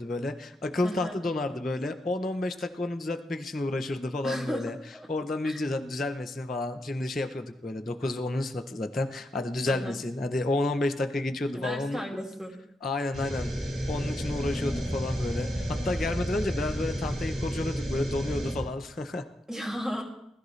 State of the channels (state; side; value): normal; both; correlation 0.83